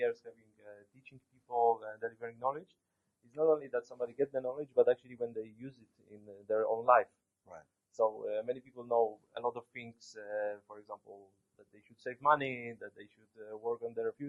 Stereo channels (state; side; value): identical; both; correlation 1.00